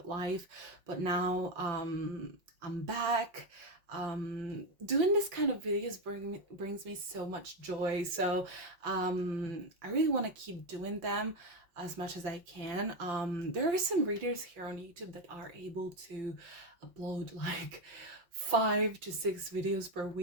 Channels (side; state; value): left; late; 5.4 ms